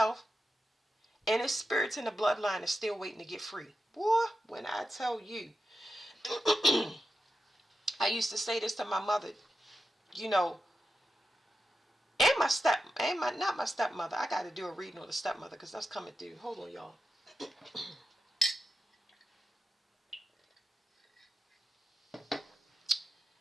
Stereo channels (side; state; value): both; normal; correlation 0.89